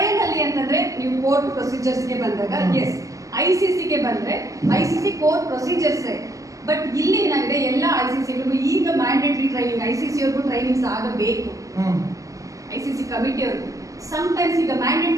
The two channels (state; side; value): late; left; 0.16 ms